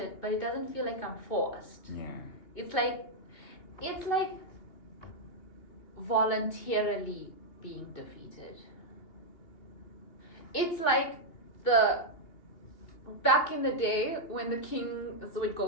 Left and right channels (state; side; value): late; right; 2.8 ms